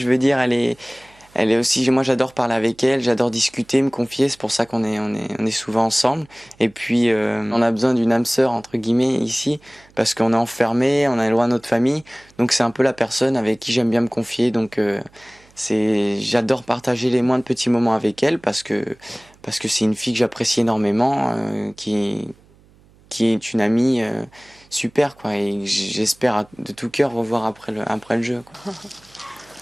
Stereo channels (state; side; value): noise; right; hum, 29 dB below the sound